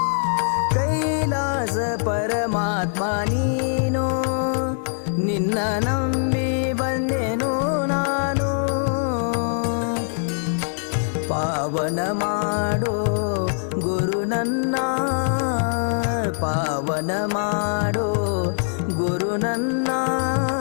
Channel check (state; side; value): silent; right; 61 dB below the other